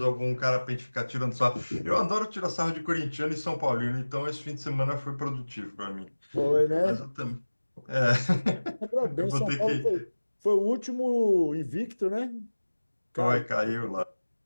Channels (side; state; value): both; inverted; correlation -1.00